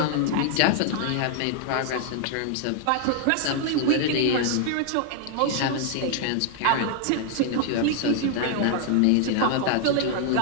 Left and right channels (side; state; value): both; different; correlation 0.00